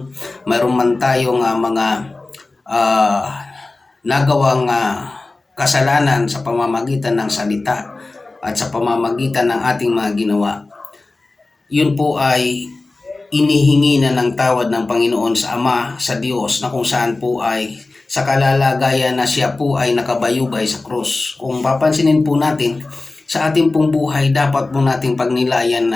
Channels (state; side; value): quieter; right; 3.3 dB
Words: mayroon man tayong mga nagawang kasalanan sa pamamagitan ng salita at sa pamamagitan ng ating mga ginawa, yun po ay inihingi na ng tawad ng Panginoon sa Ama, sa Diyos, na kung saan po ay sa kalalagayan na siya po ay nakabayubay sa krus. Kung papansinin po natin, sa ating pong buhay, dapat po nating pagnilayan